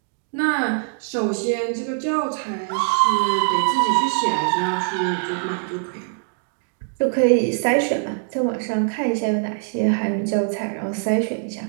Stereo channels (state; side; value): silent; left; digital silence